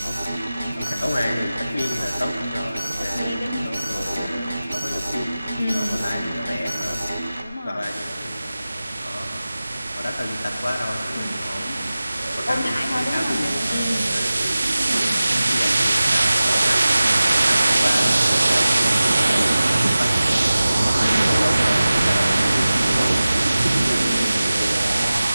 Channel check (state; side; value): inverted; both; correlation -0.96